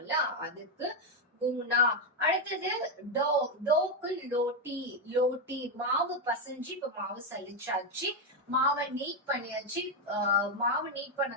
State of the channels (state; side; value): normal; both; correlation 0.05